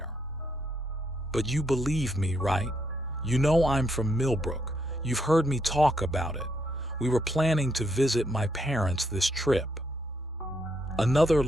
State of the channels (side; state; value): both; normal; correlation 0.76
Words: "But you believe me, right? You know I'm from Millbrook. You've heard me talk about it. We were planning to visit my parents this trip." Another